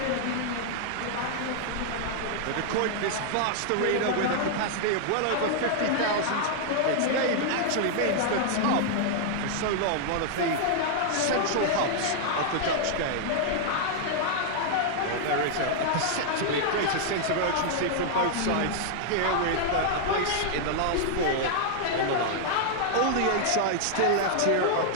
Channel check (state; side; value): different; both; correlation -0.01